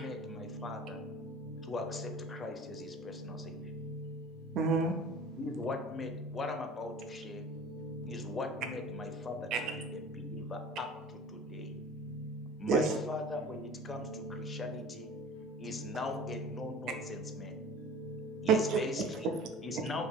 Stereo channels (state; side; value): normal; both; correlation 0.42